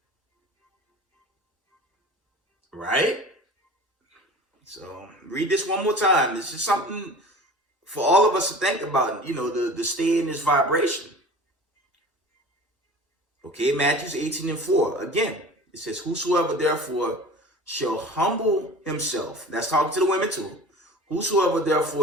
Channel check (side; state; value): both; normal; correlation 0.40